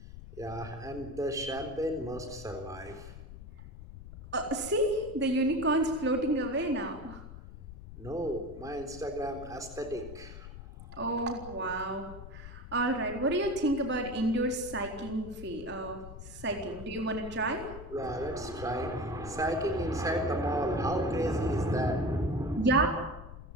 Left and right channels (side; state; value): left; noise; rumble, 13 dB below the sound